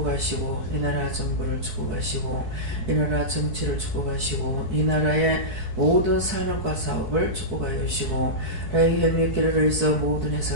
이 나라 정부를 축복하시고 이 나라 정치를 축복하시고 이 나라의 모든 산업과 사업을 축복하여 주시고 라이 헬미케르를 있어 모든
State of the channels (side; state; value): left; late; 4.6 ms